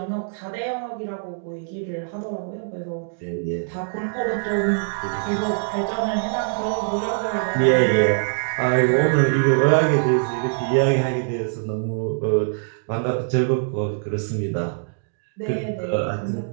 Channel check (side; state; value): left; silent; digital silence